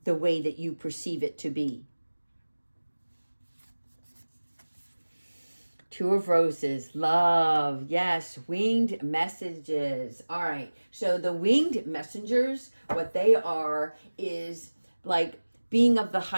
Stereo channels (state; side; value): inverted; both; correlation -1.00